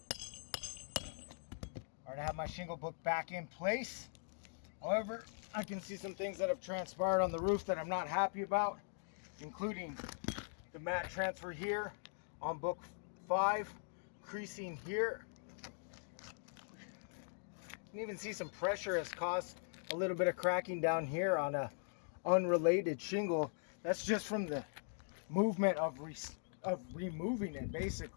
Alright, I have my shingle book back in place. However, I can see some things that have transpired on the roof that I'm not happy about, including the mat transfer here on book 5, creasing here. You can even see some pressure has caused a little bit of cracking down here on a unrelated shingle. That's just from the movement of removing it,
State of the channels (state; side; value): silent; right; digital silence